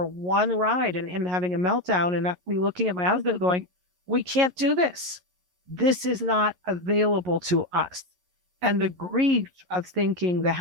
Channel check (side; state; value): left; late; 11 ms